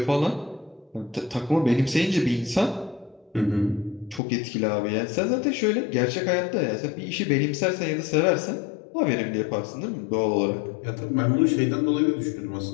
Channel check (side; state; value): right; drops out; at 4.2 s